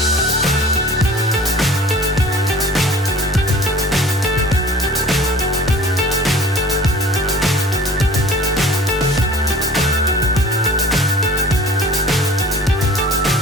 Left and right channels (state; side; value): normal; both; correlation 0.46